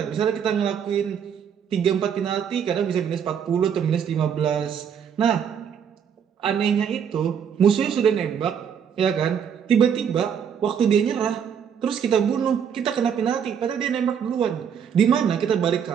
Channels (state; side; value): quieter; left; 7.8 dB